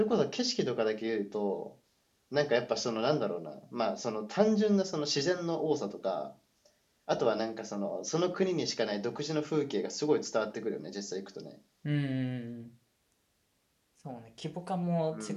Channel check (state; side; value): identical; both; correlation 1.00